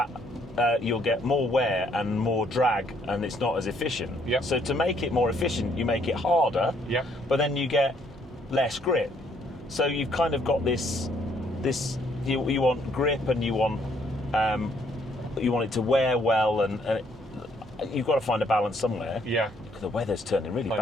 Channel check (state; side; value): normal; both; correlation 0.68